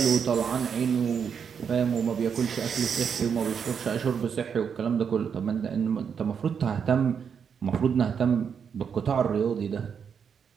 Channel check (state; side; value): quieter; left; 7.0 dB